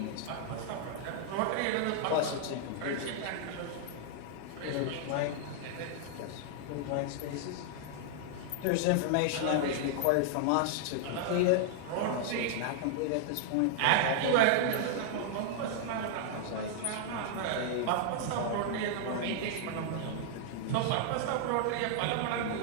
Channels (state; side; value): different; both; correlation -0.01